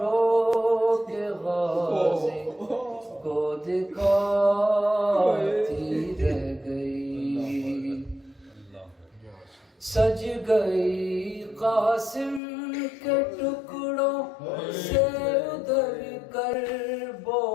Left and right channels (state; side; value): drops out; right; at 12.4 s